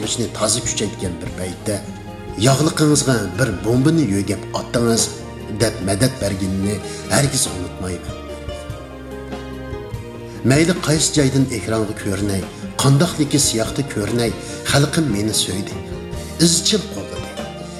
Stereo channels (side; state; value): both; identical; correlation 1.00